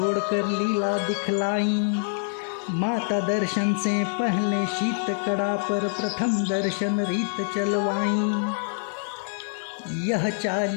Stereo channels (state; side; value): silent; right; 61 dB below the other